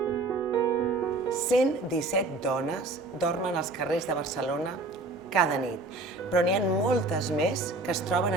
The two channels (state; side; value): quieter; left; 3.2 dB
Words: dones dormen als carrers de Barcelona cada nit, però n'hi ha moltes més que es troben